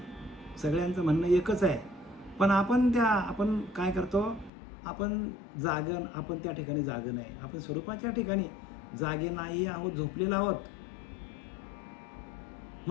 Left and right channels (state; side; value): drops out; right; at 4.5 s